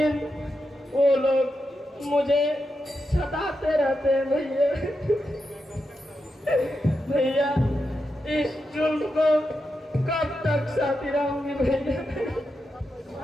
वो लोग मुझे सताते रहते हैं भैया। भैया, इस जुल्म को कब तक सहती रहूंगी भैया?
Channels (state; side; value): normal; both; correlation 0.87